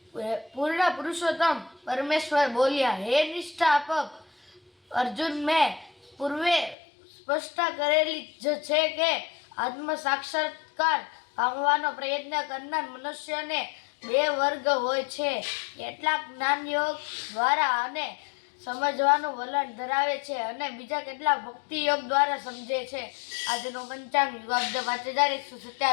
पूर्ण पुरुषोत्तम परमेश्वर बोलिया, हे निष्ठापक अर्जुन, मैं पूर्वे સ્પષ્ટ કરેલી જ છે કે આત્મ સાક્ષાત્કાર પામવાનો પ્રયત્ન કરનાર મનુષ્યને બે વર્ગ હોય છે. કેટલાક જ્ઞાન યોગ દ્વારા અને સમજવાનું વલણ ધરાવે છે અને બીજા કેટલાક ભક્તિ યોગ દ્વારા સમજે છે. આજનો પંચાંગ યુગાબ્દ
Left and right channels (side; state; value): right; drops out; at 6.8 s